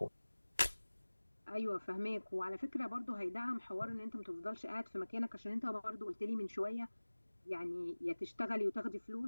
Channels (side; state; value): both; inverted; correlation -1.00